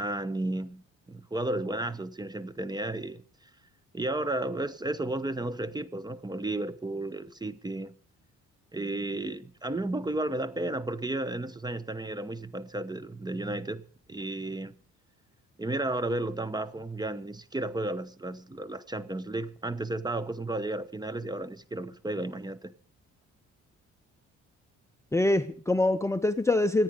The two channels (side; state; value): both; normal; correlation 0.70